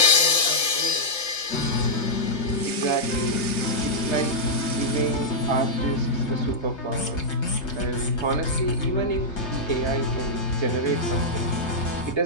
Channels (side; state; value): right; late; 3.3 ms